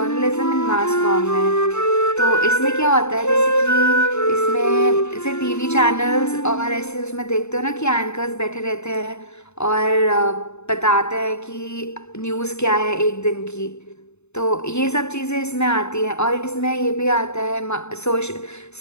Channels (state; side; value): late; right; 0.81 ms